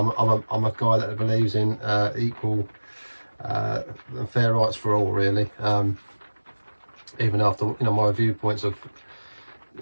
a guy that believes in equal and fair rights for all, really. Even after, you know, my viewpoints of,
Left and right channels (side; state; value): both; inverted; correlation -1.00